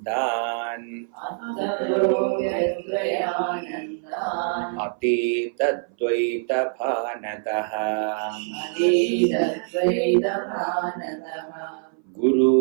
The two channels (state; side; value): silent; left; 58 dB below the other